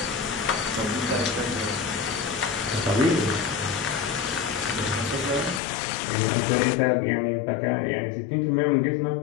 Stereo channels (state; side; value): drops out; right; at 5.6 s